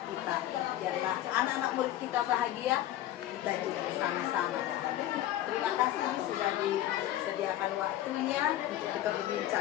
kita. Biarlah anak-anak murid kita bahagia, kita juga sama-sama bahagia. Terima kasih sudah disediakan waktunya untuk kita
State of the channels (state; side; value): quieter; right; 13.5 dB